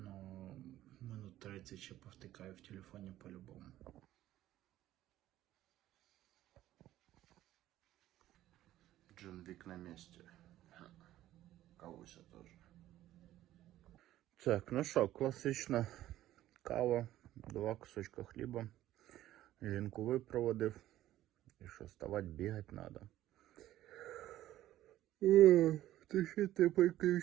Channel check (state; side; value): quieter; left; 13.9 dB